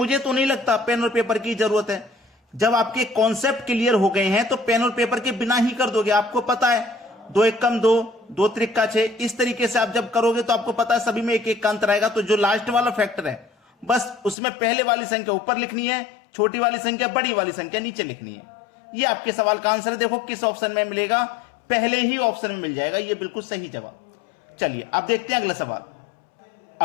तो नहीं लगता पेन और पेपर की जरूरत है। जब आपके कॉन्सेप्ट क्लियर हो गए हैं तो पेन और पेपर के बिना ही कर दोगे। आपको पता है 2 एकम 2, 2 त्रिका 6, इस तरीके से आप जब करोगे तो आपको पता है सभी में एक एक का अंतर आएगा। तो जो लास्ट वाला फैक्टर है, बस उसमें पहले वाली संख्या ऊपर लिखनी है, छोटी वाली संख्या, बड़ी वाली संख्या नीचे लिखनी है। ये आपके सवाल का आंसर है। देखो किस ऑप्शन में मिलेगा? पहले ही ऑप्शन में मिल जाएगा। ये बिल्कुल सही जवाब। चलिए अब देखते हैं अगला सवाल।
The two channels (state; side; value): drops out; right; at 14.4 s